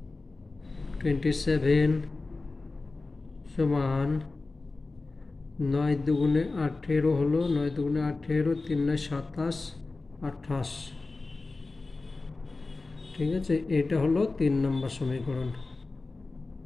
সমান 9 দুগুণে 18 হলো, 9 দুগুণে 18, 3 9 27, 28। ঠিক আছে, এটা হলো 3 নম্বর সমীকরণ।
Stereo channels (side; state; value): right; quieter; 3.5 dB